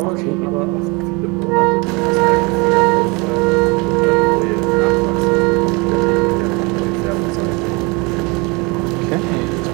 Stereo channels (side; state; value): left; quieter; 27.8 dB